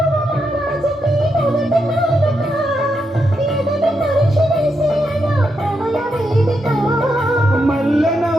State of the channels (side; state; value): both; normal; correlation 0.83